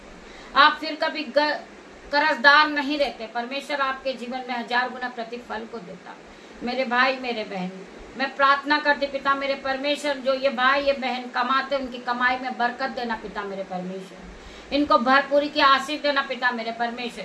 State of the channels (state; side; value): identical; both; correlation 1.00